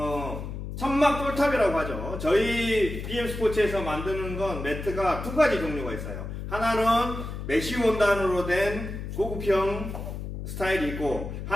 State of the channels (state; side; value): noise; left; hum, 7 dB below the sound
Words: 천막 똘탑이라고 하죠. 저희 BM스포츠에서 만드는 건 매트가 두 가지 종류가 있어요. 하나는 메쉬 원단으로 된 고급형 스타일이 있고,